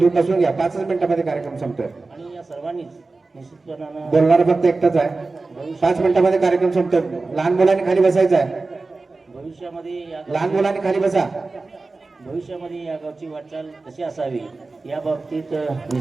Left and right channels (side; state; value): left; quieter; 3.6 dB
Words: नसून घ्या. 5 मिनिटामध्ये कार्यक्रम संपतोय. आणि या सर्वांनीच निश्चितपणानं बोलणार फक्त एकटाच आहे. 5 मिनिटामध्ये कार्यक्रम संपतोय. लहान मुलांनी खाली बसायचं आहे. लहान मुलांनी खाली बसा. भविष्यामध्ये या गावची वाटचाल कशी असावी या बाबतीत